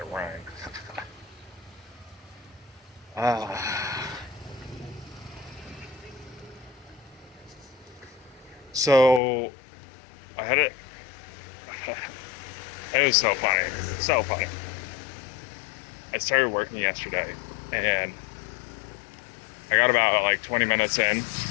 rhyme. Ah, so I had it. It was so funny. So funny. I started working yesterday and I got about like 20 minutes in.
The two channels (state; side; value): drops out; right; at 9.2 s